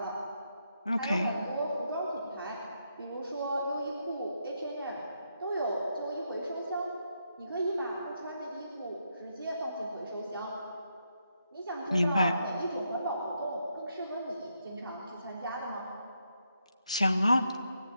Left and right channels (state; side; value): inverted; both; correlation -0.80